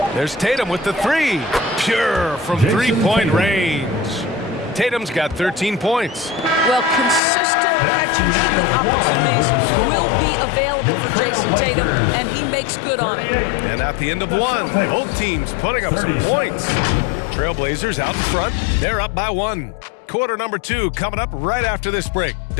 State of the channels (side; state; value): right; drops out; at 7.2 s